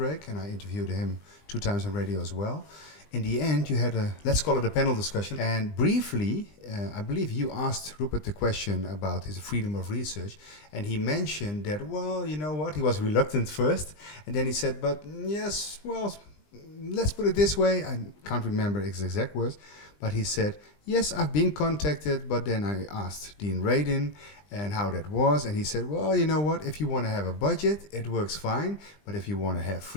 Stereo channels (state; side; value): late; right; 20 ms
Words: and I interviewed him 2 times on radio as well. In the end, you had let's call it a panel discussion. And briefly, I believe you asked Rupert the question about his freedom of research. And he mentioned that, well, you know what, he was reluctant first. And then he said, but yes, well, let's put it this way. I can't remember his exact words. But he said, yes, I've been contacted. But then I asked Dean Radin and how that was. And he said, well, you know what, if you want to have a budget, it works fine. But if you want to have